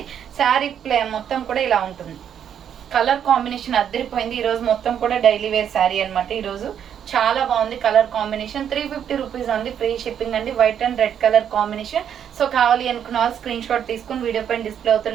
శారీ మొత్తం కూడా ఇలా ఉంటుంది. కలర్ కాంబినేషన్ అద్దరిపోయింది. ఈ రోజు మొత్తం కూడా డైలీ వేర్ శారీ అనమాట. ఈ రోజు చాలా బాగుంది colour combination. 350 rupees only, free shipping అండి. White and red colour combination. So కావాలి అనుకున్న వాళ్ళు స్క్రీన్ షాట్ తీసుకుని వీడియో పైన డిస్ప్లే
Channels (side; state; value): left; quieter; 8.9 dB